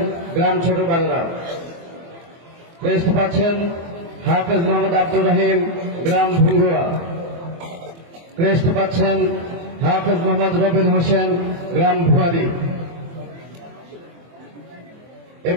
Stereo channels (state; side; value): late; left; 24 ms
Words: গ্রাম ছোট বাংলা। ক্রেস্ট পাচ্ছেন হাফেজ মোহাম্মদ আব্দুর রহিম গ্রাম ভুঙ্গুয়া। ক্রেস্ট পাচ্ছেন হাফেজ মোহাম্মদ রবিন হোসেন গ্রাম ভুয়ারি। এ